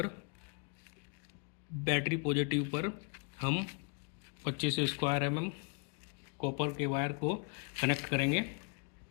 बैटरी पॉजिटिव पर हम 25 स्क्वायर mm कॉपर के वायर को कनेक्ट करेंगे।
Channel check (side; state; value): right; quieter; 38.0 dB